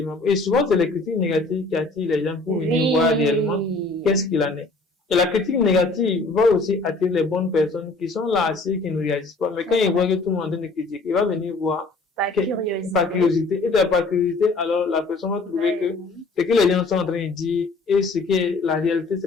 Et souvent, c'est les critiques négatives qui attirent les gens pour venir voir réellement qu'est-ce qu'il en est. Et la critique négative va aussi attirer les bonnes personnes qui sont là assis, qui ne réagissent pas. Mais quand ils voient que tout le monde est en train de critiquer, il va venir voir par curiosité. Par curiosité. Et par curiosité, alors la personne va trouver que ce que les gens sont en train de dire et ce qui est la réalité,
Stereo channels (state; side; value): quieter; right; 3.4 dB